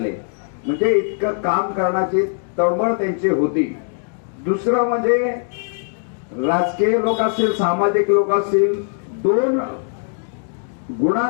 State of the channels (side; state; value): right; silent; digital silence